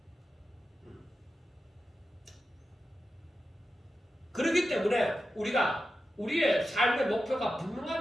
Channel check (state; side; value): normal; both; correlation 0.91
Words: 그렇기 때문에 우리가 우리의 삶의 목표가